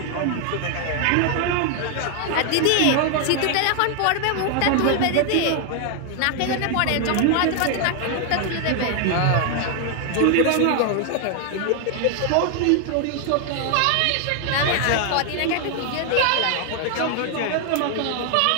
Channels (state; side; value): different; both; correlation 0.00